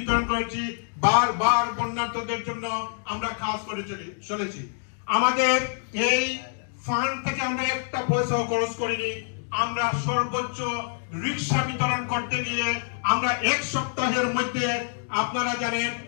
করেছি, বারবার বন্যার্থদের জন্য আমরা কাজ করে চলেছি। আমাদের এই ফান্ড থেকে আমরা একটা পয়সাও খরচ করিনি। আমরা সর্বোচ্চ রিক্সা বিতরণ করতে গিয়ে আমরা 1 সপ্তাহের মধ্যে, আপনারা জানেন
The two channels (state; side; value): silent; right; digital silence